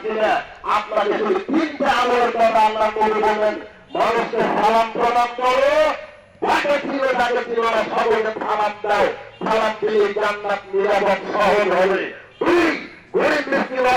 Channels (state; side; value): identical; both; correlation 1.00